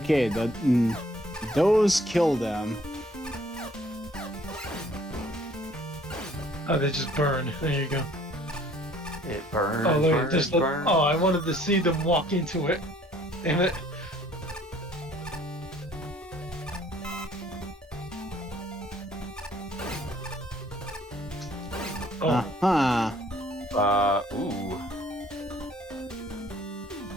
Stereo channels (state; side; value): normal; both; correlation 0.58